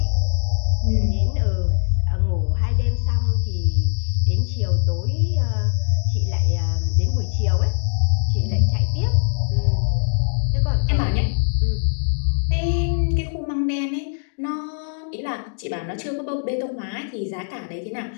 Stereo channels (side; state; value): right; silent; digital silence